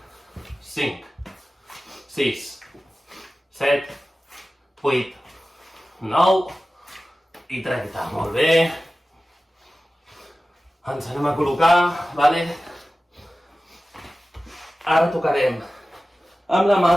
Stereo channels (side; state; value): both; normal; correlation 0.96